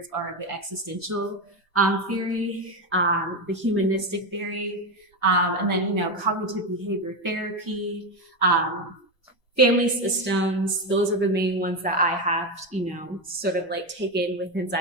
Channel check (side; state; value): both; normal; correlation 0.12